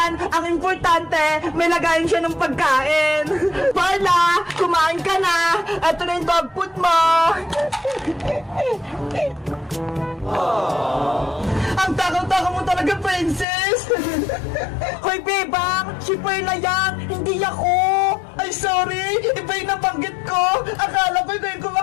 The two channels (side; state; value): right; drops out; at 13.5 s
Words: Ang importante, may lagayin siya ng pagkain. Perla, kumain ka na. Ito na yung dog food mo. Ang takaw-takaw mo talaga, Princess. Hoy, bebang, si Perla yan, hindi ako. Ay, sorry, iba yung nabanggit ko. Akala ko ikaw yung